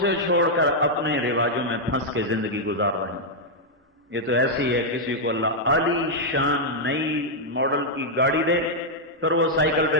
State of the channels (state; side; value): normal; both; correlation -0.04